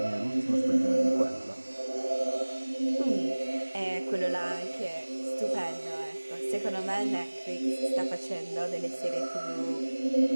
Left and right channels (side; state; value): both; inverted; correlation -1.00